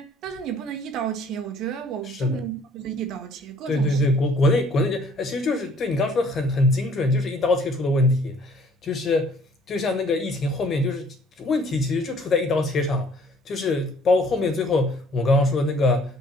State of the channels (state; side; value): normal; both; correlation 0.58